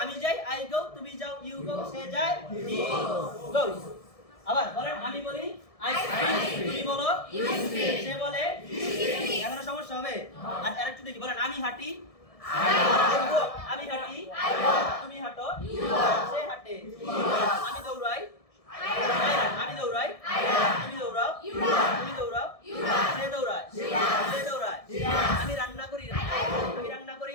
আমি যাই আই গো তুমি যাও ইউ গো সে যায় হি গোস আবার বলেন আমি বলি আই স্পিক তুমি বলো ইউ স্পিক সে বলে হি স্পিক এখানে সমস্যা হবে আর আরেকটু দেখি বলেন আমি হাঁটি আমি হাঁটি তুমি হাঁটো সে হাঁটে আমি দৌড়াই আমি দৌড়াই তুমি দৌড়াও তুমি দৌড়াও সে দৌড়ায় সে দৌড়ায় আমি রান্না করি তুমি রান্না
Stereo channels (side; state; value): right; late; 1.7 ms